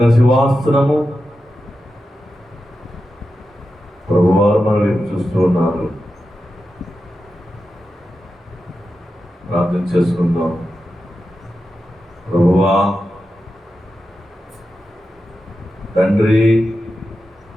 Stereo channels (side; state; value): both; normal; correlation 0.90